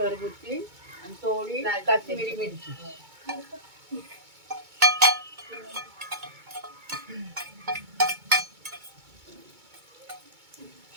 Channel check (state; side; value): late; left; 2.2 ms